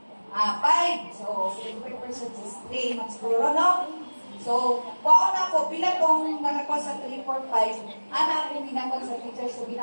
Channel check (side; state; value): both; inverted; correlation -1.00